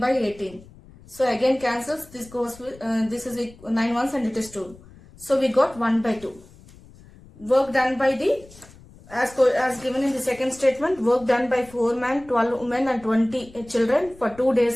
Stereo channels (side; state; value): left; noise; rumble, 23 dB below the sound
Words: 18. So again cancels. This goes with, this is 9 ones and it is 2. So we got 1 by 2. Work done by the, as given in the second statement, work done by 4 men, 12 women and 20 children for 2